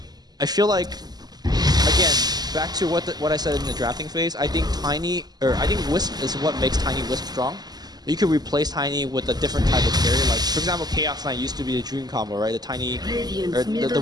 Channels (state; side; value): late; left; 0.20 ms